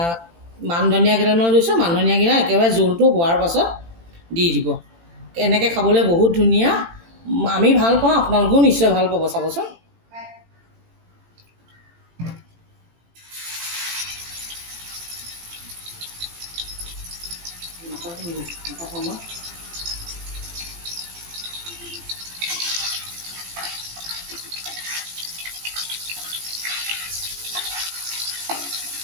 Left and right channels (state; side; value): late; left; 18 ms